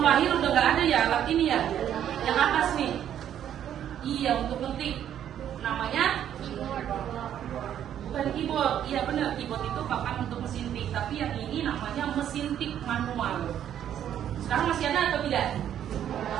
lahir udah nggak ada ya alat ini ya? Yang atas nih. Iya untuk ngetik. Namanya? Bukan keyboard, iya benar, keyboard itu papan untuk mesin tik, tapi yang ini namanya mesin tik manual. Sekarang masih ada atau tidak?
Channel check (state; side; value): quieter; left; 10.2 dB